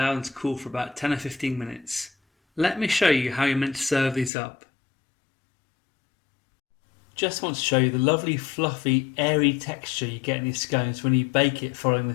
them to cool for about 10 or 15 minutes. Let me show you how you're meant to serve these up. Just want to show you the lovely fluffy airy texture you get in these scones when you bake it following the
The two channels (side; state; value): right; drops out; at 4.3 s